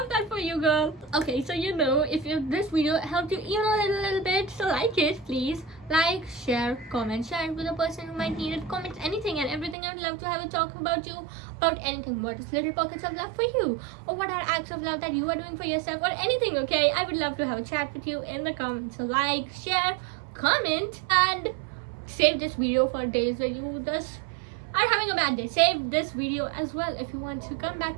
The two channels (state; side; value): drops out; left; at 9.8 s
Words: that for you, girl. Okay, so you know, if this video helped you even a little bit, so like it, please. Like, share, comment, share it with a person who might need it. Comment anything and everything. I'd love to have a talk about you, about anything. What is little pockets of love for you, or what are acts of love that you are doing for yourself, or anything, okay? I would love to have a chat with you in the comments. So like, share, comment, and save this video for days where you just are having a bad day. Save this video as well. If you want to come back